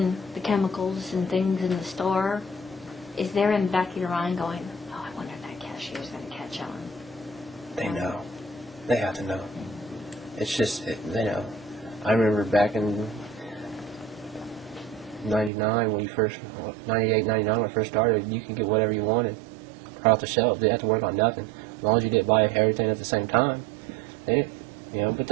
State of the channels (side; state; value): left; drops out; at 15.5 s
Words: the chemicals and things in the store, is there in the back of your mind going, oh, I wonder if that cashier's going to catch on? They know. They have to know. It's just, they know. I remember back in 99, 98, 99, when I first started, you could get whatever you wanted right off the shelf. They didn't have to work on nothing. As long as you didn't buy everything at the same time. They didn't, but